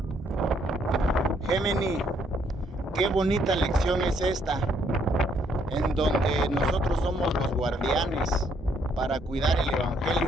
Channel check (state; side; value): normal; both; correlation 0.70